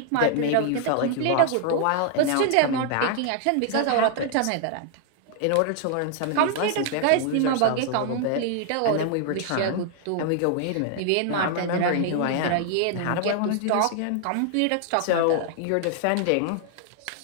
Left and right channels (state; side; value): different; both; correlation 0.00